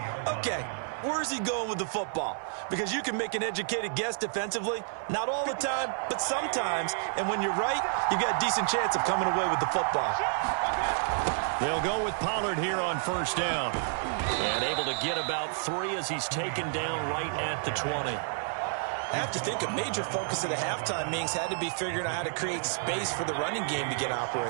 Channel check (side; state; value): left; silent; 56 dB below the other